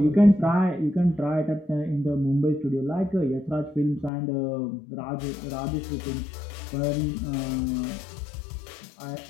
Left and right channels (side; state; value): right; drops out; at 4.1 s